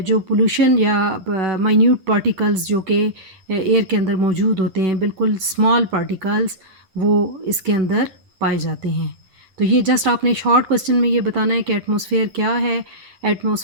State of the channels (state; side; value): late; left; 11 ms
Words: पोल्यूशन या माइन्यूट पार्टिकल्स जो कि एयर के अंदर मौजूद होते हैं, बिल्कुल स्मॉल पार्टिकल्स, वो इसके अंदर पाए जाते हैं। तो ये जस्ट आपने शॉर्ट क्वेश्चन में ये बताना है कि एटमॉस्फेयर क्या है।